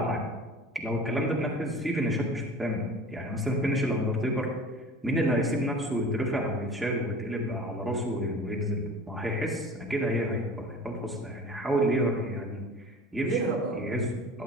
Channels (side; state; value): both; normal; correlation 0.40